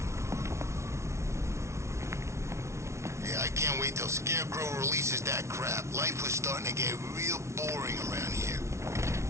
Yeah, I can't wait till Scarecrow releases that crap. Life was starting to get real boring around here.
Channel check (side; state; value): left; late; 0.13 ms